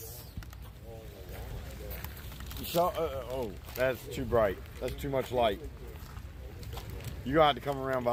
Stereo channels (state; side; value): identical; both; correlation 1.00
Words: Oh, that's too bright. That's too much light. You're gonna have to come around